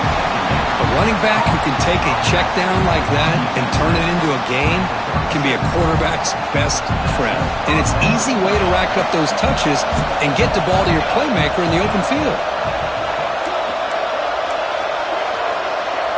A running back who can take a check down like that and turn it into a gain can be a quarterback's best friend. And it's an easy way to rack up those touches and get the ball to your playmaker in the open field.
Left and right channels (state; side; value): identical; both; correlation 1.00